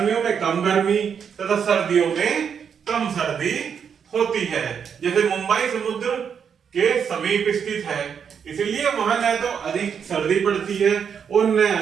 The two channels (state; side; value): quieter; left; 7.3 dB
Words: में कम गर्मी तथा सर्दियों में कम सर्दी होती है। जैसे मुंबई समुद्र के समीप स्थित है, इसलिए वहां न तो अधिक सर्दी पड़ती है और न